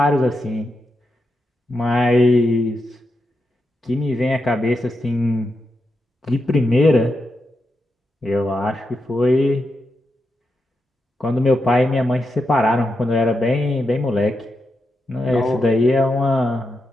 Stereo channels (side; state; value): both; normal; correlation 0.86